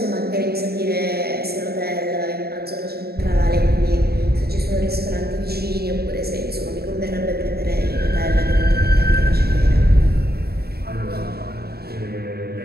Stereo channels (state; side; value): late; left; 0.46 ms